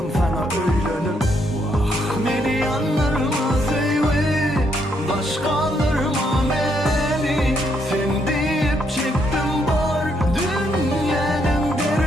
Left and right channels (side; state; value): both; normal; correlation 0.74